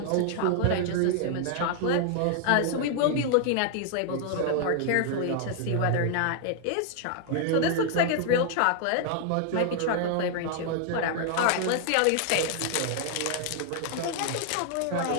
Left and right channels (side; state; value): both; different; correlation 0.00